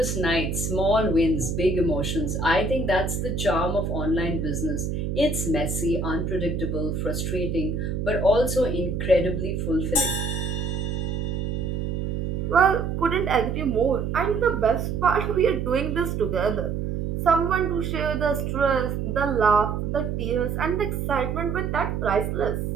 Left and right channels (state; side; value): noise; right; hum, 2 dB below the sound